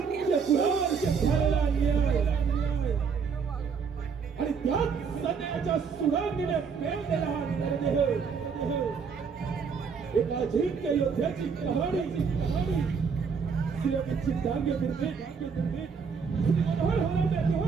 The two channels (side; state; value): left; quieter; 5.9 dB